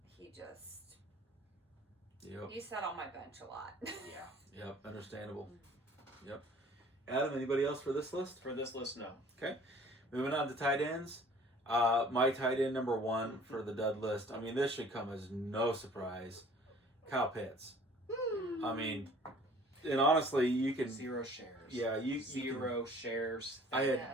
he just he sat on my bench a lot. Yeah. Yep, understandable. Yep. Adam, anybody else for this list? For this list, no. Okay. Moving on to tight ends. My tight end number one for the dud list. I mean, this should come as no surprise. Kyle Pitts. I mean, and honestly, you can 0 shares. Yeah, you 0 shares. I had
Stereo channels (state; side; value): normal; both; correlation 0.51